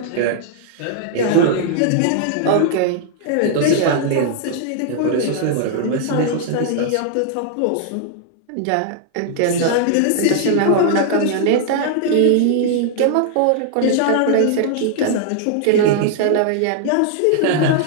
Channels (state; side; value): different; both; correlation -0.01